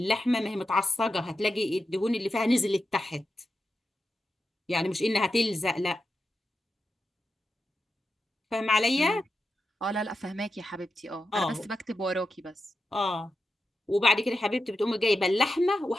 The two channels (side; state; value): both; normal; correlation 0.89